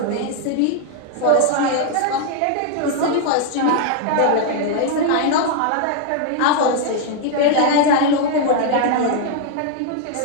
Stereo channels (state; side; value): different; both; correlation 0.00